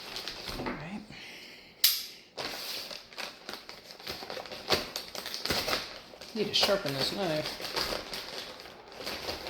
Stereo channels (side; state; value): both; identical; correlation 1.00